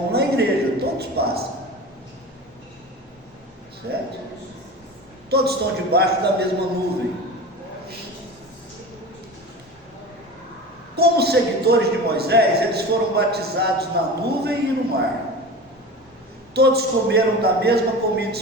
na igreja, todos passam, certo? Todos estão debaixo da mesma nuvem. Como seguidores de Moisés, eles foram batizados na nuvem e no mar. Todos comeram da mesma comida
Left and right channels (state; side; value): normal; both; correlation 0.32